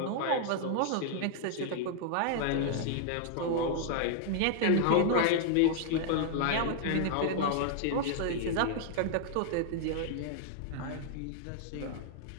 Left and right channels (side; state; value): both; different; correlation 0.00